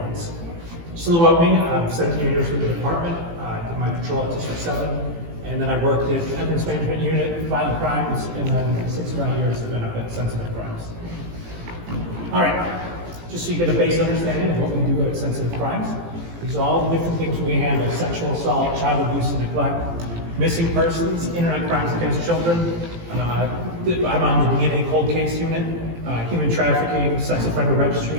Just a little about me. I'm 17 years with the department. I did my patrol at District 7. And then I worked at Evidence Management Unit, Violent Crimes, and then 6 or 9 years I've been up at Sensitive Crimes. All right, just so you get a base understanding of what we do at Sensitive Crimes. These are all the different things we handle: sexual assault, child abuse and neglect, missing persons, internet crimes against children. I'm on the DNA cold case unit, human trafficking, sex offender registry,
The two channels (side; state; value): left; late; 18 ms